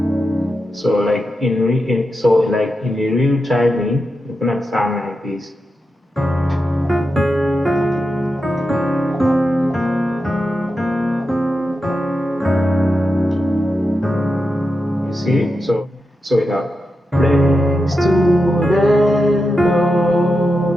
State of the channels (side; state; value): both; normal; correlation 0.89